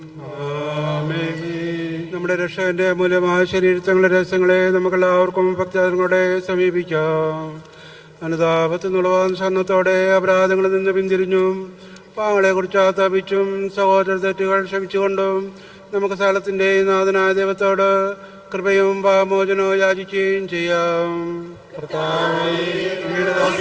നമ്മുടെ രക്ഷകന്റെ മൂലമായ ശരീരത്തങ്ങളുടെ രഹസ്യങ്ങളെ നമുക്കെല്ലാവർക്കും ഭക്തങ്ങളോടെ സമീപിക്കാം. അനുതാപത്തിനുള്ള സന്നത്തോടെ അപരാധങ്ങളിൽ നിന്ന് പിന്തിരിഞ്ഞും പാങ്ങളെ കുറിച്ച് ആത്താപിച്ചും സഹോദര തെറ്റുകൾ ക്ഷമിച്ചുകൊണ്ടും നമുക്ക് സകലത്തിൻ്റെയും നാഥനായ ദൈവത്തോട് കൃപയും പാപമോചനവും യാചിക്കുകയും ചെയ്യാം. കർത്താവേ, അങ്ങയുടെ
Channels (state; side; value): identical; both; correlation 1.00